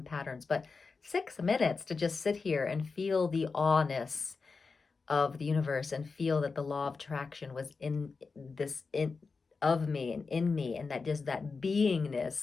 patterns, but 6 minutes to just sit here and feel the awness of the universe and feel that the law of attraction was in of me and in me, and that just that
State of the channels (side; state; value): right; quieter; 4.6 dB